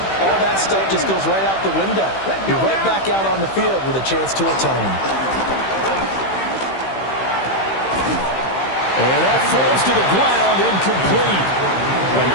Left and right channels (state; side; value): late; right; 15 ms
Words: All that stuff just goes right out the window. You're right back out on the field with a chance to atone. And that falls to the ground, incomplete. A